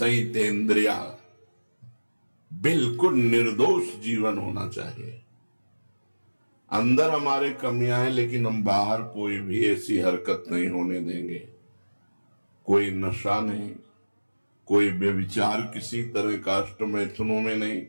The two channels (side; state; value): both; inverted; correlation -1.00